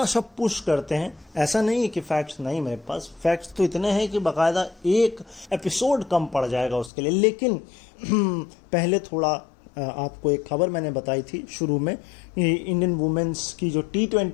सा पुश करते हैं। ऐसा नहीं है कि फैक्ट्स नहीं मेरे पास, फैक्ट्स तो इतने हैं कि बाकायदा एक एपिसोड कम पड़ जाएगा उसके लिए। लेकिन पहले थोड़ा आपको एक खबर मैंने बताई थी शुरू में, इंडियन वुमेन्स की जो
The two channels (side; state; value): right; drops out; at 6.9 s